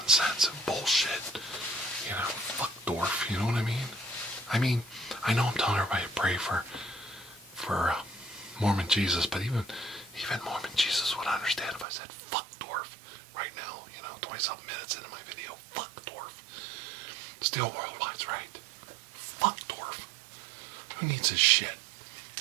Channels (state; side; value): drops out; left; at 11.9 s